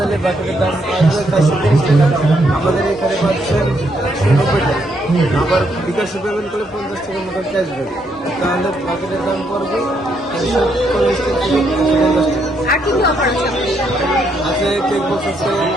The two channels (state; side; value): normal; both; correlation 0.75